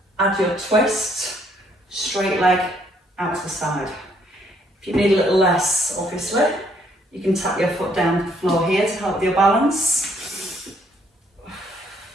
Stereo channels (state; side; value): normal; both; correlation 0.68